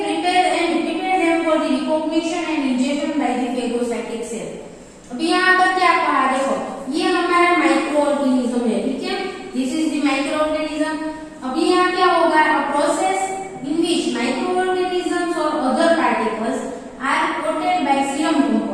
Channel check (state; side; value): identical; both; correlation 1.00